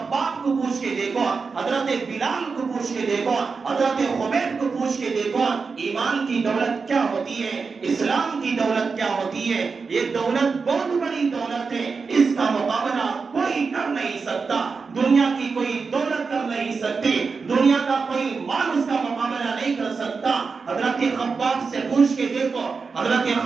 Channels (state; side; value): quieter; left; 4.9 dB